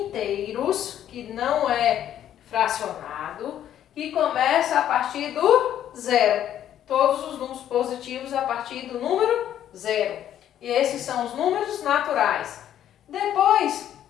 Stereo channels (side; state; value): right; quieter; 10.9 dB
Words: que não é fracionado, que começa a partir do zero. Todos os números positivos a partir do número zero. E esses são os números naturais. Depois,